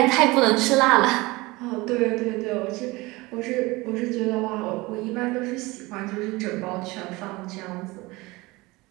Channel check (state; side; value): quieter; left; 22.2 dB